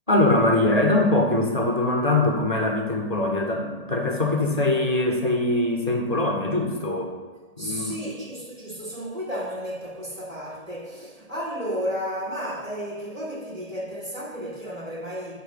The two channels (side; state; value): left; late; 1.8 ms